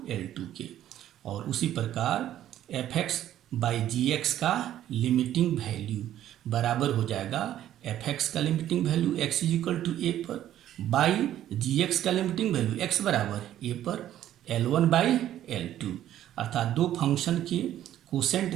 L2 के। और उसी प्रकार F X by G X का लिमिटिंग वैल्यू बराबर हो जाएगा एफ एक्स का limiting value x is equal to A पर बाई जी एक्स का लिमिटिंग वैल्यू x बराबर ए पर L1 बाई L2। अर्थात दो फंक्शन के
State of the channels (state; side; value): quieter; left; 12.1 dB